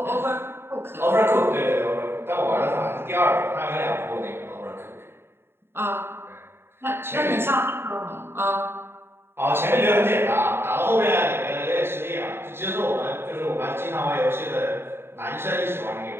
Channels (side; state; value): left; late; 0.11 ms